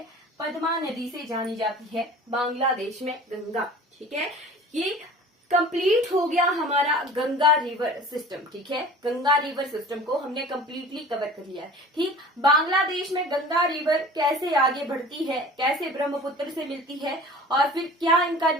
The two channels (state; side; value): normal; both; correlation 0.42